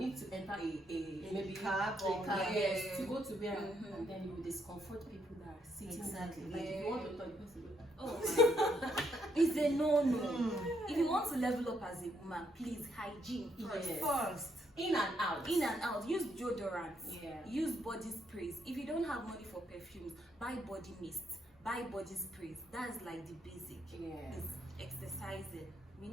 to enter a maybe cab a or- cab, Yeah. yes, to go to where, Mhm. and then you will discomfort people that are sitting. Exactly. Like if Yeah. you want to talk, you have to go. Oh my. It's a no-no. Mm. If you want to level up as a woman, please hygiene first. Yes. First. In and out. In and out. Use deodorant. Yeah. Use body sprays. If you don't have money for perfumes, buy body mist. Buy body sprays. That's like the basic. Yeah. It's exercising. We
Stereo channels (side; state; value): both; normal; correlation 0.74